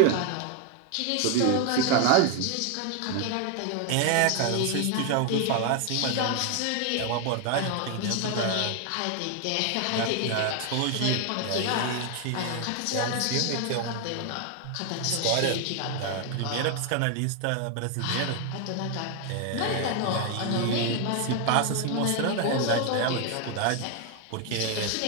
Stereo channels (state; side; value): different; both; correlation 0.01